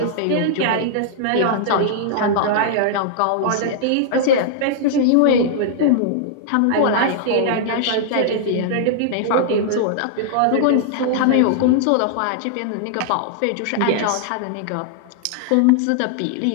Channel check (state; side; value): different; both; correlation -0.01